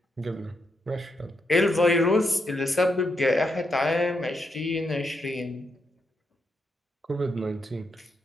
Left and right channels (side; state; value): both; normal; correlation 0.81